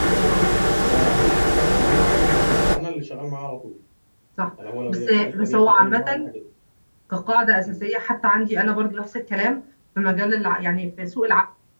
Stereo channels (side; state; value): both; inverted; correlation -1.00